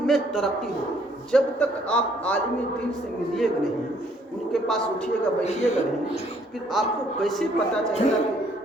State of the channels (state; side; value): normal; both; correlation 0.64